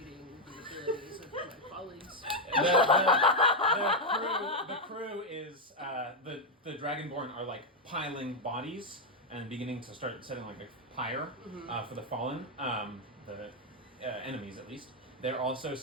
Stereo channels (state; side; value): normal; both; correlation 0.02